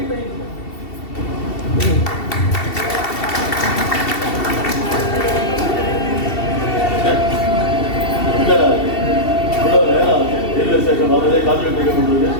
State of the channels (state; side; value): late; right; 2.7 ms